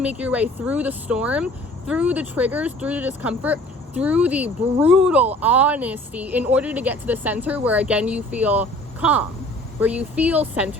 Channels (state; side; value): normal; both; correlation 0.50